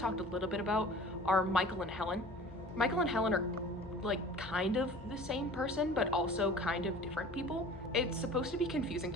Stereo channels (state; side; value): normal; both; correlation 0.43